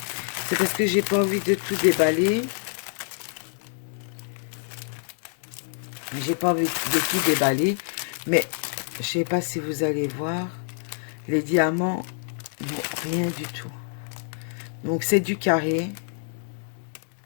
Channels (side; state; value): right; silent; digital silence